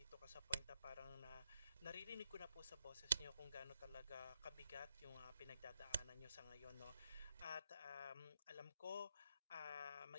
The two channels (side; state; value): both; inverted; correlation -0.80